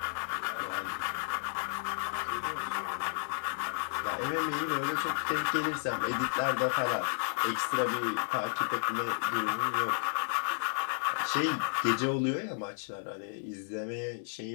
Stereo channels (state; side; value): silent; right; 56 dB below the other